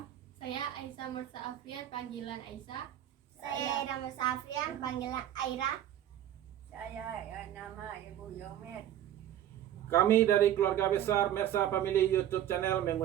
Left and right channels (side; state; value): left; quieter; 11.6 dB